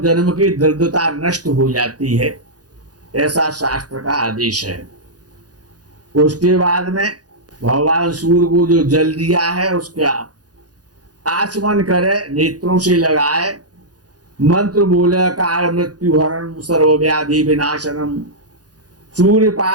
की दरिद्रता नष्ट हो जाती है, ऐसा शास्त्र का आदेश है। उसके बाद में भगवान सूर्य को जो जल दिया है उसका आचमन करे, नेत्रों से लगाए, मंत्र बोले काल मृत्यु हरण सर्वव्याधि विनाशनम सूर्य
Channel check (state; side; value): late; left; 0.68 ms